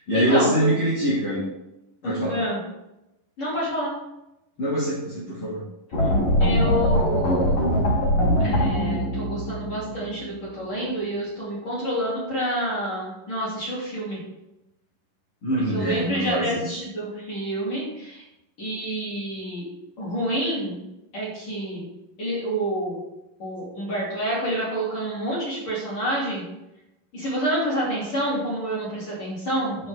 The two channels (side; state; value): right; late; 11 ms